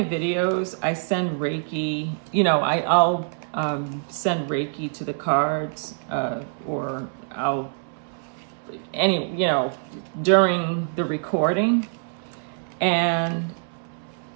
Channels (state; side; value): silent; left; 62 dB below the other